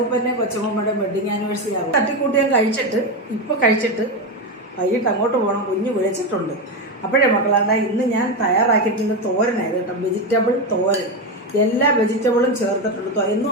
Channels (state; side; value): normal; both; correlation 0.13